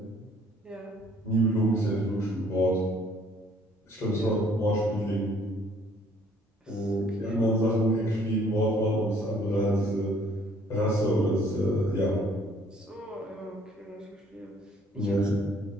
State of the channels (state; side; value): normal; both; correlation 0.60